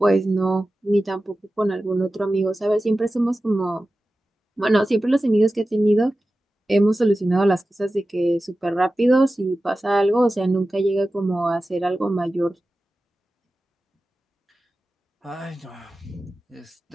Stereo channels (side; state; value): both; normal; correlation 0.95